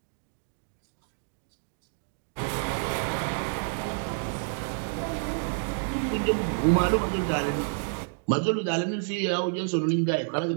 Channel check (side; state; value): left; silent; 59 dB below the other